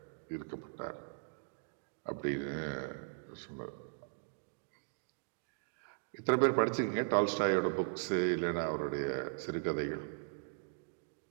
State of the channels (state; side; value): silent; left; digital silence